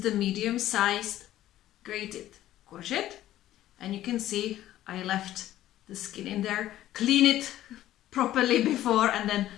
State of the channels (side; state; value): right; quieter; 13.6 dB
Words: the medium-sized grated courgette, and you can see I left the skin in there. Clean it properly before, and then